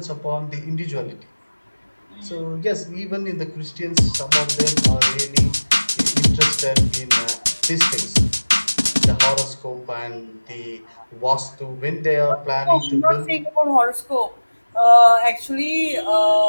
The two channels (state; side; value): inverted; both; correlation -1.00